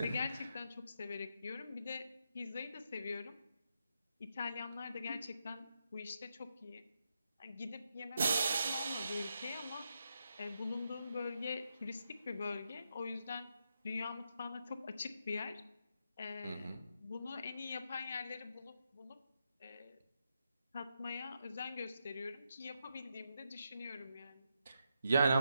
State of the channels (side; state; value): both; inverted; correlation -0.83